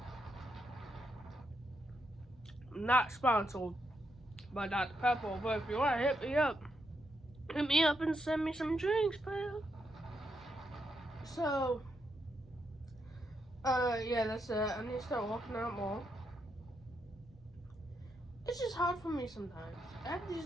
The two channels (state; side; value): normal; both; correlation 0.81